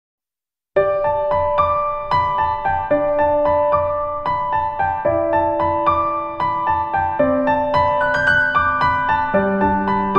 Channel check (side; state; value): both; identical; correlation 1.00